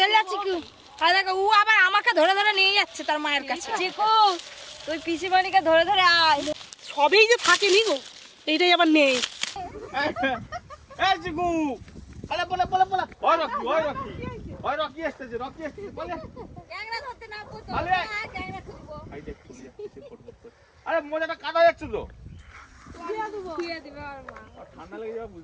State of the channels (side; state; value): both; identical; correlation 1.00